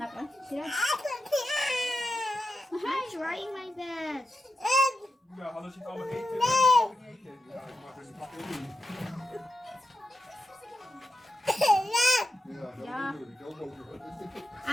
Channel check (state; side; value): normal; both; correlation 0.89